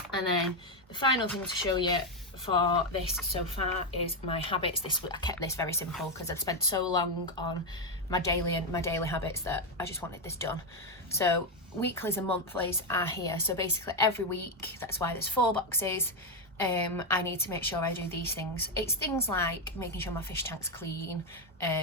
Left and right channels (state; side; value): normal; both; correlation 0.05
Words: And then the final thing to show you for this so far is my habits. I kept this very simple because I'd spent so long on my daily habits that I just wanted this done. So weeklies and monthlies are here. So basically every week, that's why there's 4 boxes. I need to make sure I do these things. It's things like making sure my fish tank's clean,